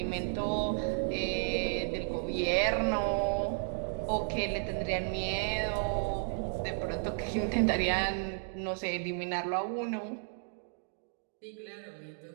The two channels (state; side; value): silent; left; digital silence